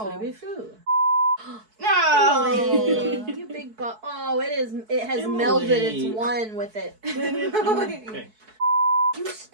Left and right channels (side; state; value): left; late; 4.6 ms